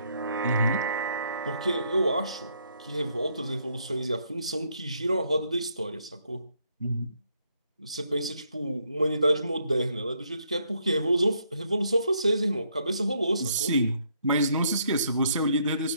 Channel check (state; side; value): inverted; both; correlation -0.72